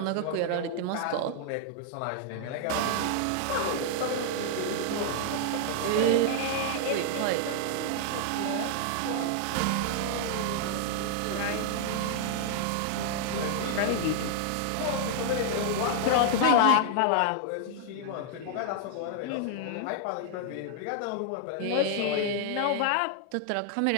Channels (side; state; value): both; different; correlation 0.00